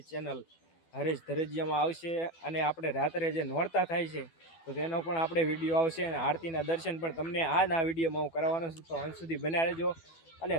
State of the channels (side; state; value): right; late; 12 ms